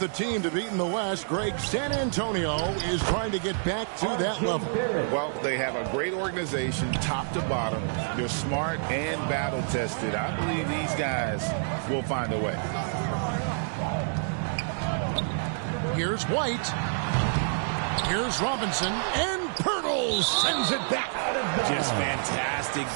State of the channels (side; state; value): left; silent; digital silence